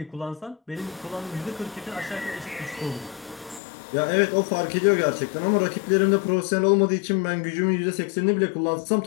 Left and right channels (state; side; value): drops out; right; at 3.6 s